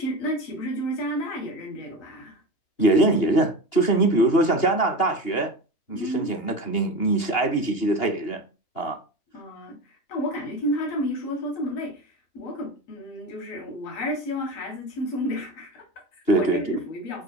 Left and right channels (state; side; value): late; right; 2.8 ms